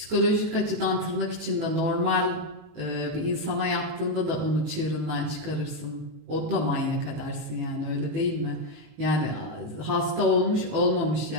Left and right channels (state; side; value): late; left; 18 ms